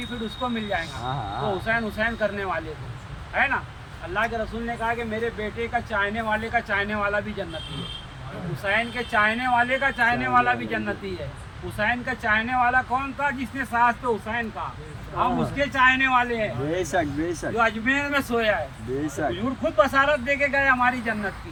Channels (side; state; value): both; identical; correlation 1.00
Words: उसको मिल जाएगा, हाँ। तो हुसैन हुसैन करने वाले को, है ना। अल्लाह के रसूल ने कहा कि मेरे बेटे का चाहने वाले का चाहने वाला भी जन्नती है, हुसैन के चाहने वाले का चाहने वाला भी जन्नती है। हुसैन का चाहने वाला कौन था? जिसने सास पे हुसैन का, हम उसके चाहने वाले हैं, बेशक, बेशक, जो अजमेर में सोया है। बेशक, हुजूर खुद बसारत दे के गए हमारी जन्नत की।